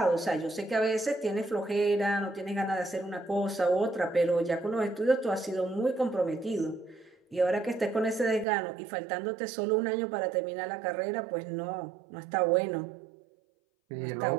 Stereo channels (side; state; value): left; drops out; at 8.5 s